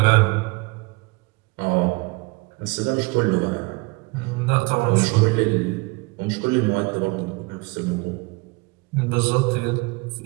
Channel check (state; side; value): quieter; left; 26.4 dB